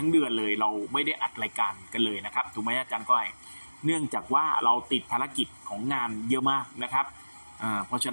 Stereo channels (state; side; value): inverted; both; correlation -1.00